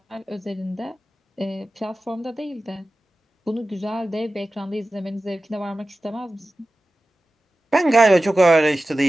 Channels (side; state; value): both; normal; correlation 0.95